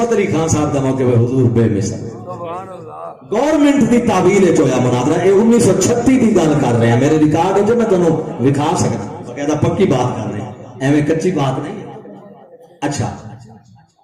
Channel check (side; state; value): both; identical; correlation 1.00